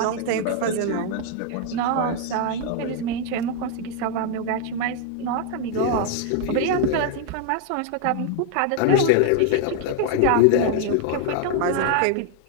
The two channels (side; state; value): both; different; correlation 0.00